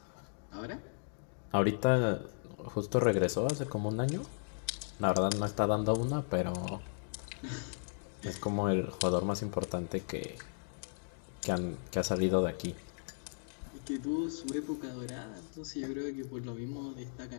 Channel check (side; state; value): right; silent; digital silence